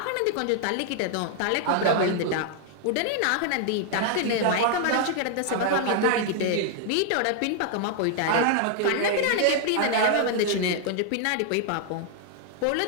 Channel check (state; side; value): different; both; correlation 0.00